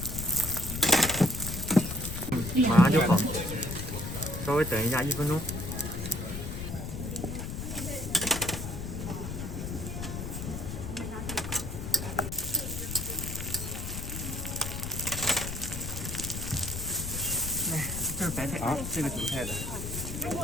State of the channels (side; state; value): left; noise; rumble, 6 dB below the sound